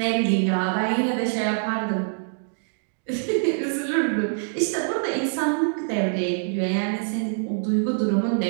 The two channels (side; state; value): left; silent; digital silence